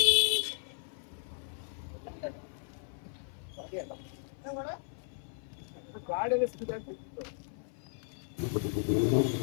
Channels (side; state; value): right; silent; 54 dB below the other